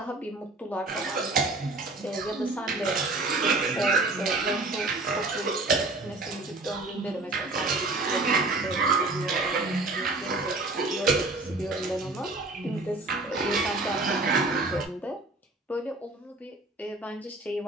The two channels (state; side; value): quieter; left; 3.1 dB